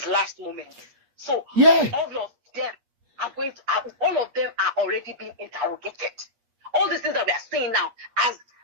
last moment. So Yeah. all of them are already being interrogated. All these things that we are saying now has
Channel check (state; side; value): late; left; 8.5 ms